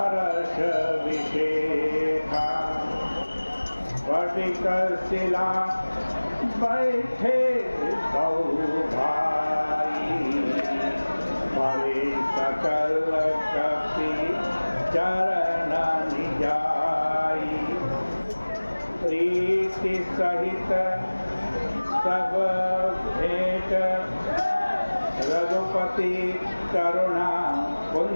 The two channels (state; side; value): inverted; both; correlation -1.00